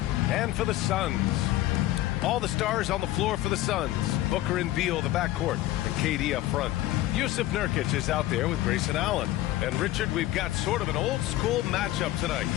And for the Suns, all the stars on the floor for the Suns. Booker and Beal, the backcourt, and KD up front. Yusuf Nurkic is out there with Grayson Allen. And Richard, we've got sort of an old-school matchup tonight.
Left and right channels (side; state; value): right; quieter; 15.4 dB